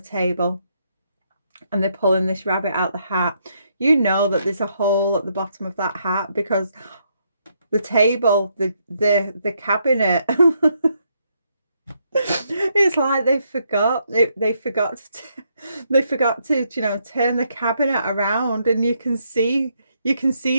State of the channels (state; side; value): inverted; both; correlation -0.76